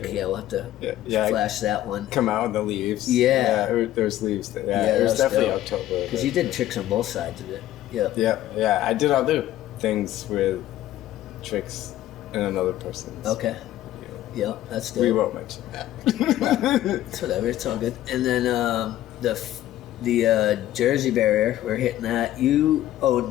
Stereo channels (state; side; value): quieter; right; 13.7 dB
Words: Yeah, we'll have to flash that one. Come out in the leaves. Yeah. There's leaves. Yeah, it was definitely dope. October. Because you did tricks on both sides of it. Yeah. I did other things with tricks in another person's. Okay. Yeah, that's dope. We won't mention that. It's whatever. It's all good. And then the Jersey barrier, we're hitting that. You own